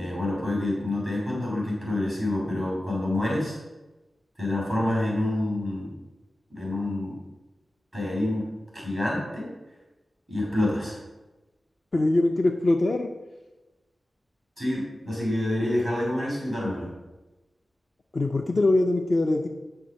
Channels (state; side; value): normal; both; correlation 0.95